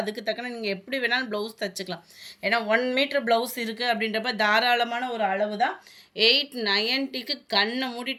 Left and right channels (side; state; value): both; identical; correlation 1.00